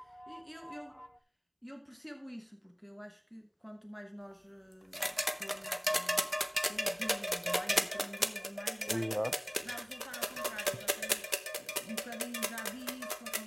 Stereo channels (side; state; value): both; identical; correlation 1.00